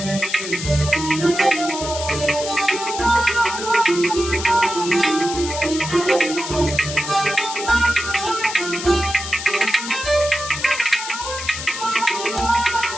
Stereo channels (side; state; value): left; noise; hiss, 7 dB below the sound